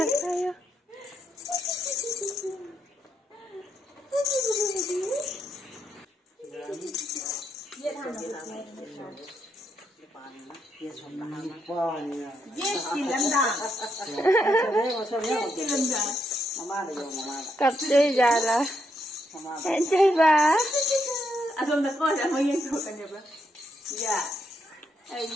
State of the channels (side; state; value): both; normal; correlation 0.78